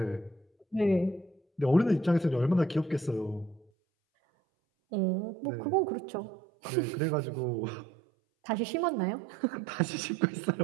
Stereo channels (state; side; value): drops out; left; at 3.7 s